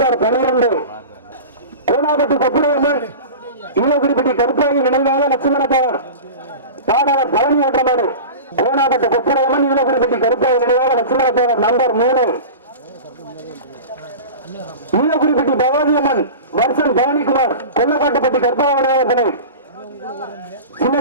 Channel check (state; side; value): inverted; both; correlation -0.32